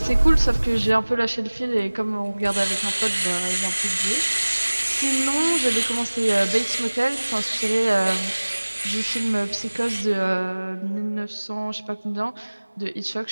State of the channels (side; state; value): both; inverted; correlation -1.00